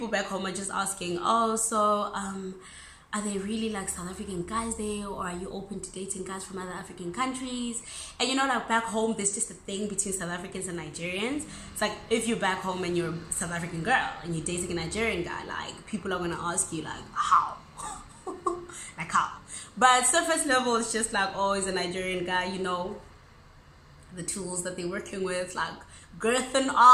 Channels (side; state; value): both; identical; correlation 1.00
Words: back home are just asking, oh, so, are they really like South African guys there, or are you open to dating guys from other African countries? And you know, like back home, there's just a thing between South Africans and Nigerians. It's like, if you're back home and you're a South African girl and you're dating a Nigerian guy, like, people are gonna ask you like, how? Like, how? But surface level, it's just like, oh, he's a Nigerian guy, you know, the tools that they're working with, like girth and